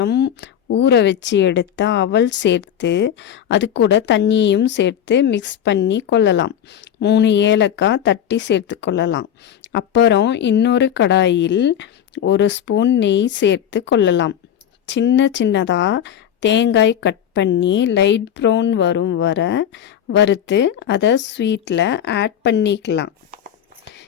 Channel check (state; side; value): quieter; right; 9.6 dB